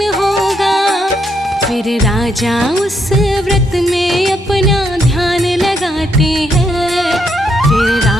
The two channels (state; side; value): normal; both; correlation 0.77